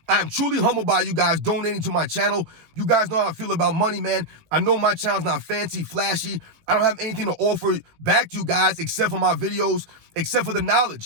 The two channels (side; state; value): left; late; 18 ms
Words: I am truly humbled by you guys donating to my channel. You guys know how I feel about money, man. I know my channel's not fancy, flashy. I don't have anything to offer back to you guys except for my videos, except for the